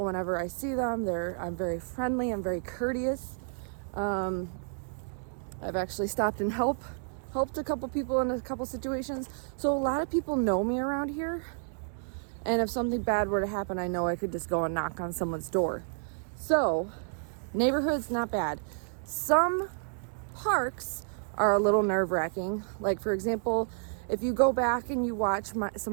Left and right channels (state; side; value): silent; left; digital silence